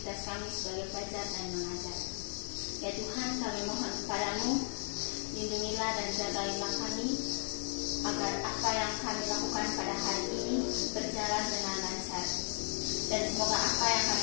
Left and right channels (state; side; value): silent; right; 54 dB below the other